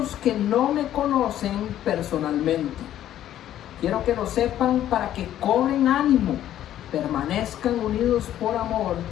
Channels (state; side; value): quieter; right; 11.9 dB